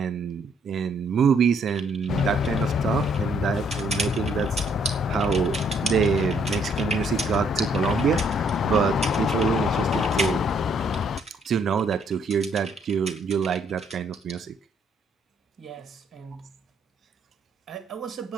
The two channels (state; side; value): normal; both; correlation 0.68